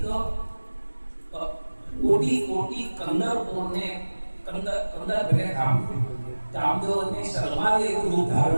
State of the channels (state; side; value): inverted; both; correlation -1.00